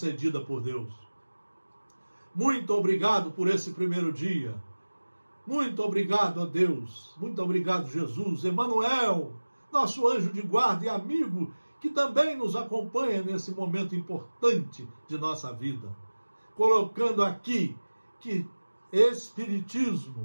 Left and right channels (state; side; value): inverted; both; correlation -1.00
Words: por Deus. Muito obrigado por esse primeiro dia. Muito obrigado a Deus, muito obrigado Jesus, Emmanuel, nosso anjo de guarda e amigo, que também nos acompanha nesse momento importante de nossa vida, colocando aqui que